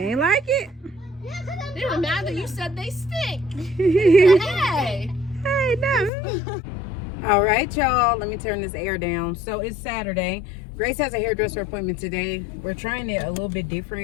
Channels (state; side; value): drops out; right; at 6.1 s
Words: ain't like it. They were mad that you said they stink. Hey. Hey, no. All right, y'all. Let me turn this air down. So it's Saturday. Grace has a hairdresser appointment today. We're trying it a little bit